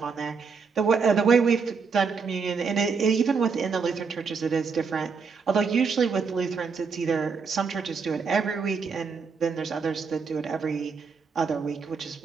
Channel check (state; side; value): quieter; left; 5.2 dB